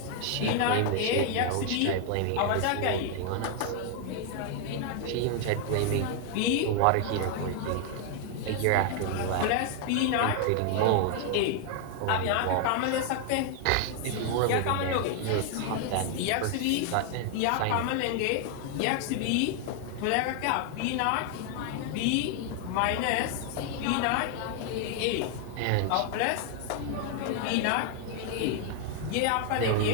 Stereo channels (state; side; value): different; both; correlation 0.00